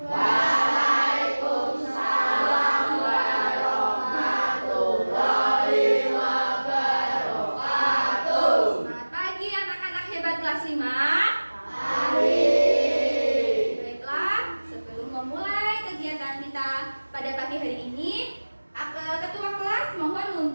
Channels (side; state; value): both; inverted; correlation -1.00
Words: Waalaikumsalam warahmatullahi wabarakatuh. Selamat pagi anak-anak hebat kelas 5. Pagi. Baiklah, sebelum memulai kegiatan kita pada pagi hari ini, ketua kelas mohon